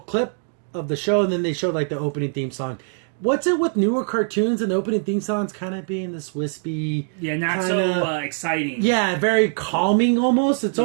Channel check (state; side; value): silent; left; 64 dB below the other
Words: of the show, and then they showed like the opening theme song. What's it with newer cartoons and the opening theme songs kind of being this wispy? Yeah, not kinda, so exciting. Yeah, very calming almost. It's